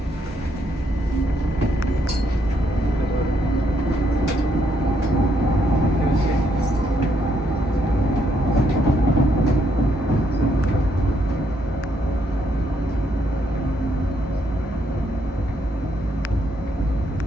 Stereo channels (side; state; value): both; normal; correlation 0.74